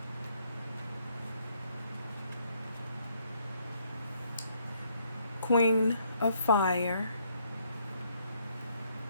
Queen of Fire.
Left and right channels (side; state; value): both; inverted; correlation -0.70